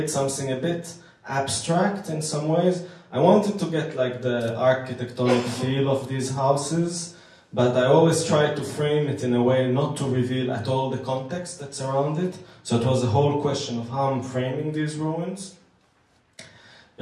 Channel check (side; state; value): both; identical; correlation 1.00